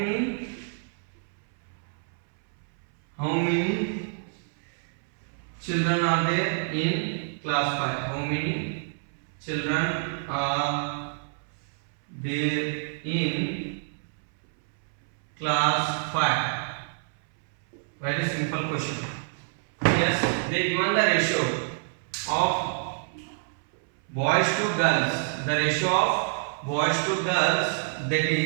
children are there in class 5? How many children are there in class 5? Very simple question. Yes, they given the ratio of boys to girls. The ratio of boys to girls, that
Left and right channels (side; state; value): left; silent; 60 dB below the other